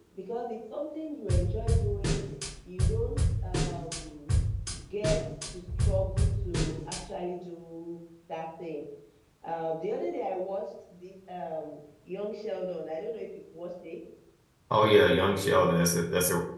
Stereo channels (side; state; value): both; identical; correlation 1.00